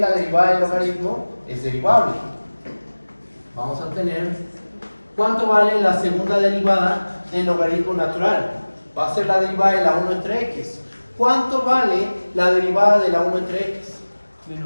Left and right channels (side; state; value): both; inverted; correlation -1.00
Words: la derivada del logaritmo es derivable. Vamos a obtener ¿cuánto vale la segunda derivada del logaritmo natural? Va a ser la derivada de la 1 entre x. ¿Cuánto vale la derivada de la 1 entre x?